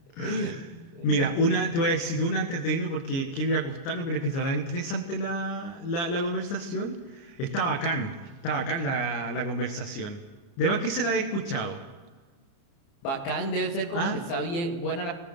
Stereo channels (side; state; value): right; late; 30 ms